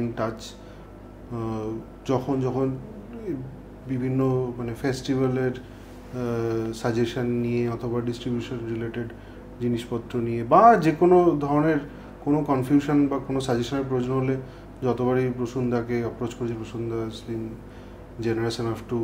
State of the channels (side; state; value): both; identical; correlation 1.00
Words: in touch. যখন যখন বিভিন্ন মানে ফেস্টিভ্যালের সাজেশন নিয়ে অথবা ডিস্ট্রিবিউশন রিলেটেড জিনিসপত্র নিয়ে বা যে কোনো ধরনের কোনো কনফিউশন বা কোনো সাজেশনের প্রয়োজন হলে যতবারই প্রসূনদাকে অ্যাপ্রোচ করেছি, প্রসূনদা has been generous enough to